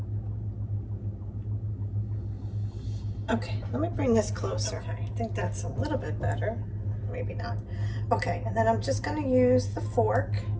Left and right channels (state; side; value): identical; both; correlation 1.00